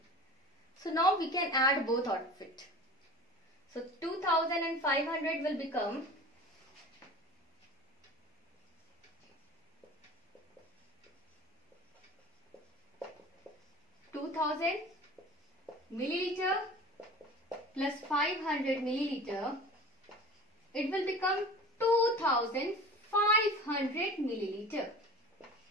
So now we can add both of it. So 2000 and 500 will become 2000 milliliter plus 500 milliliter. It will become 2500 milliliter.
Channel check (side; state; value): both; normal; correlation 0.39